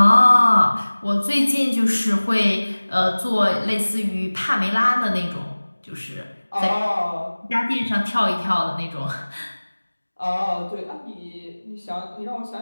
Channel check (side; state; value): both; inverted; correlation -1.00